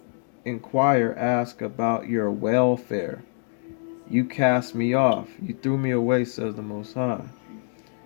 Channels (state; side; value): silent; right; 62 dB below the other